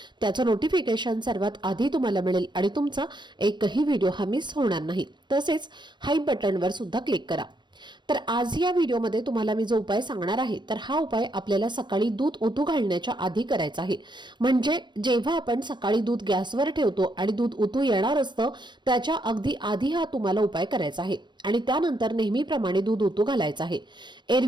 त्याचं नोटिफिकेशन सर्वात आधी तुम्हाला मिळेल आणि तुमचा एकही व्हिडिओ हा मिस होणार नाही. तसेच हाईप बटनवर सुद्धा क्लिक करा. तर आज या व्हिडिओमध्ये तुम्हाला मी जो उपाय सांगणार आहे तर हा उपाय आपल्याला सकाळी दूध उतू घालण्याच्या आधी करायचा आहे. म्हणजे जेव्हा आपण सकाळी दूध गॅसवर ठेवतो आणि दूध उतू येणार असतं त्याच्या अगदी आधी हा तुम्हाला उपाय करायचा आहे आणि त्यानंतर नेहमीप्रमाणे दूध उतू घालायचं आहे.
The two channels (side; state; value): left; late; 0.22 ms